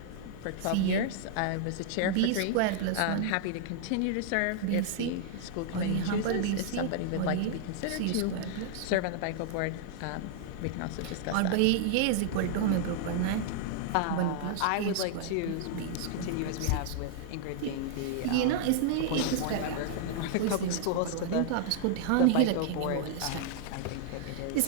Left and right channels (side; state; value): both; different; correlation -0.01